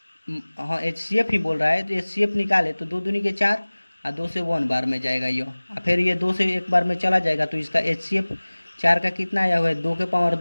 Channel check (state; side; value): inverted; both; correlation -1.00